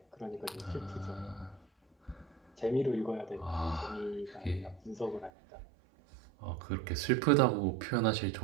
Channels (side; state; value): left; drops out; at 5.3 s